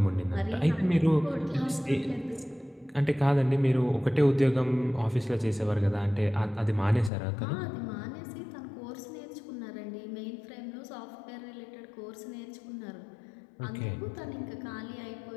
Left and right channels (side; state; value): right; drops out; at 7.1 s